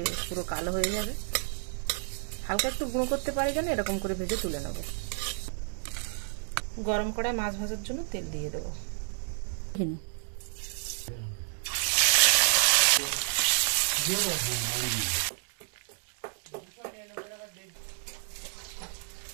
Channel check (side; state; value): left; silent; digital silence